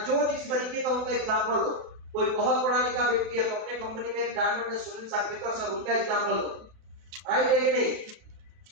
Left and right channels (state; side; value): late; left; 32 ms